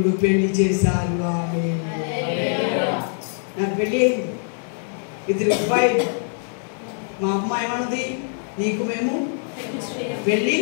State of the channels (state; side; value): silent; right; 60 dB below the other